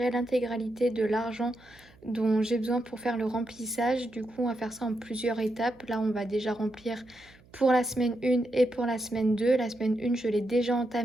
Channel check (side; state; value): right; noise; hum, 27 dB below the sound